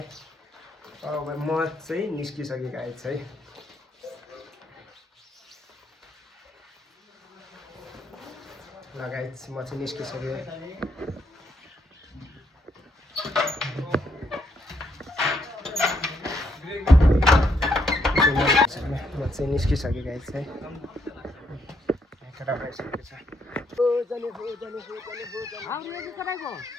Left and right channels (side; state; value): both; normal; correlation 0.74